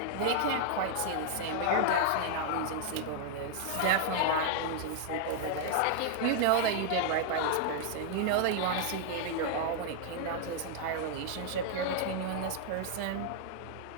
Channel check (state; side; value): different; both; correlation 0.00